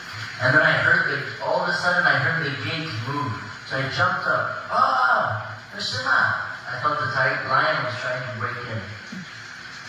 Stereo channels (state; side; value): identical; both; correlation 1.00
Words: And then all of a sudden I heard the gate move. So I jumped up. Ah, Krishna! I thought the lion was trying to break in.